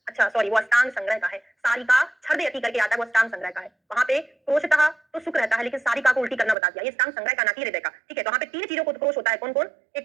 अच्छा सॉरी, वो अष्टांग संग्रह का है। सारिका छर्दयति करके आता है, वो अष्टांग संग्रह का है। वहां पे क्रोशतः तो सुख रहता है, लेकिन सारिका को उल्टी करना बता दिया, ये अष्टांग संग्रह का ना कि हृदय का। ठीक है, तो वहां पे तीन चीजों को उत्क्रोश होता है, कौन कौन?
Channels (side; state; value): left; drops out; at 6.6 s